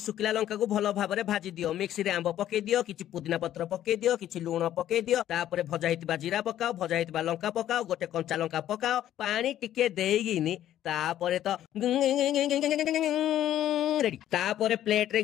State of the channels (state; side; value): quieter; right; 12.0 dB